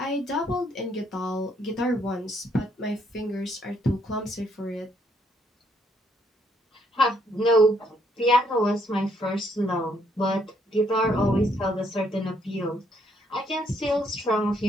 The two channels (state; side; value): normal; both; correlation 0.71